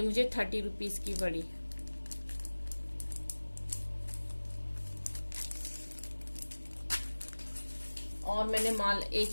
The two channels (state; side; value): inverted; both; correlation -1.00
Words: मुझे 30 रुपीज की पड़ी। और मैंने माल